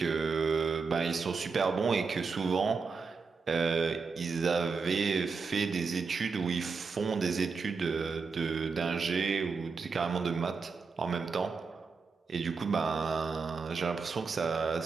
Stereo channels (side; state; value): left; quieter; 4.9 dB